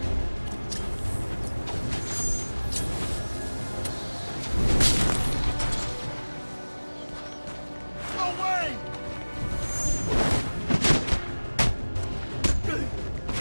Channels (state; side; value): inverted; both; correlation -1.00